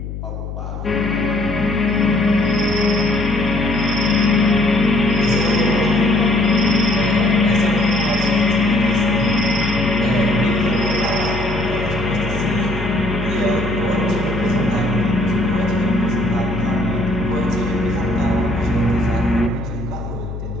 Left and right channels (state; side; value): noise; left; hum, 8 dB below the sound